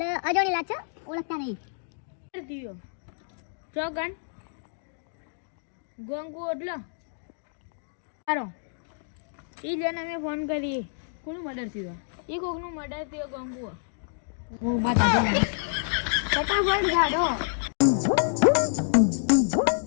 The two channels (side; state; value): right; silent; digital silence